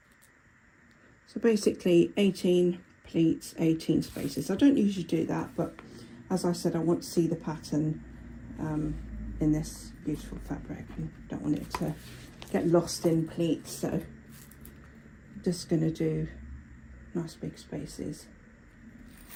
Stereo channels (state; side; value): identical; both; correlation 1.00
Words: So basically 18 pleats, 18 spaces. I don't usually do that, but as I said, I want to see the pattern in this beautiful fabric and don't want it to get lost in pleats. So I'm just going to do nice big spaces.